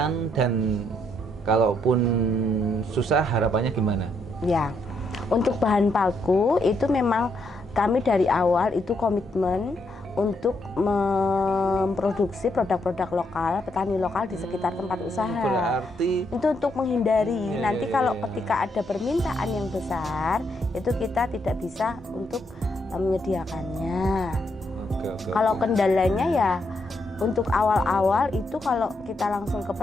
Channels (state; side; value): normal; both; correlation 0.76